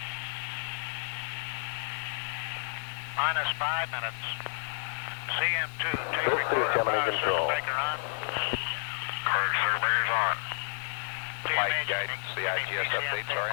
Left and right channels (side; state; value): right; silent; 57 dB below the other